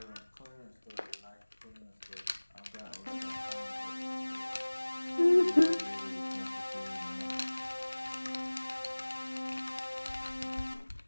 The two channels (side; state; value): both; inverted; correlation -1.00